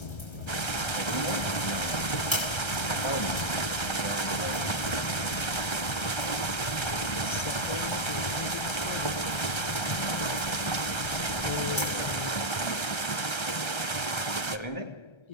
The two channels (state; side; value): late; right; 1.3 ms